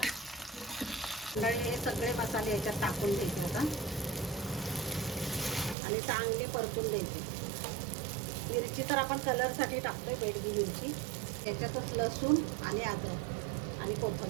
तर हे सगळे मसाले याच्यात टाकून घ्यायचे आता आणि चांगले परतून द्यायचे। मिरची तर आपण कलरसाठी टाकतोय, बेडगी मिरची। याच्यातच लसूण आणि अद्रक आणि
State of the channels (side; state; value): left; drops out; at 5.8 s